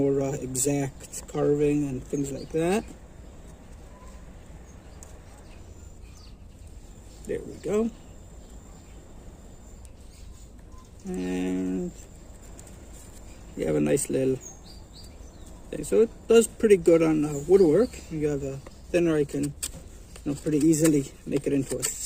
exact carving and things like that. There we go. And you have a nice little thing. So it does pretty good on woodwork. You have a thinner, I can pretty easily make it into a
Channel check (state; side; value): identical; both; correlation 1.00